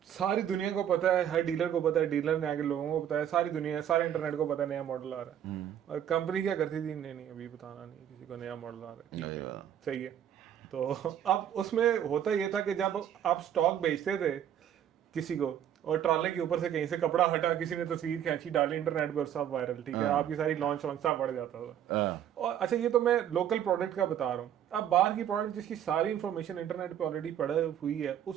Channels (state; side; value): quieter; left; 10.0 dB